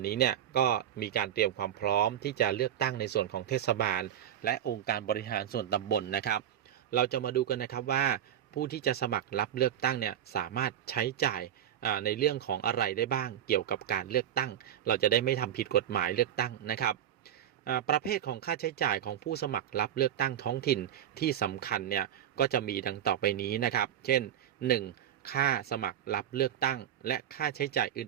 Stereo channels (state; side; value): quieter; left; 10.5 dB